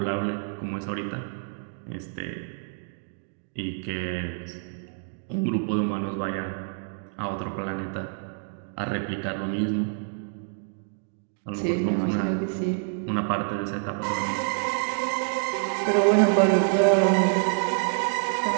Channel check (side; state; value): left; silent; 59 dB below the other